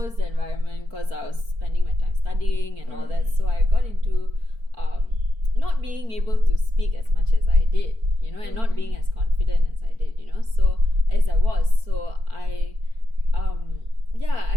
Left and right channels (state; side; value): late; left; 4.5 ms